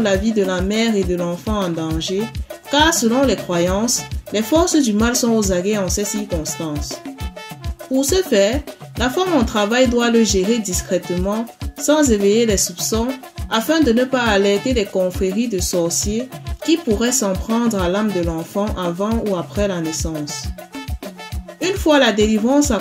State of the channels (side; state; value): both; identical; correlation 1.00